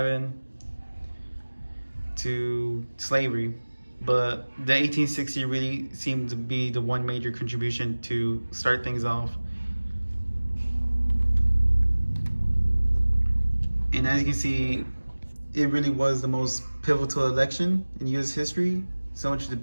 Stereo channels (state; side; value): inverted; both; correlation -1.00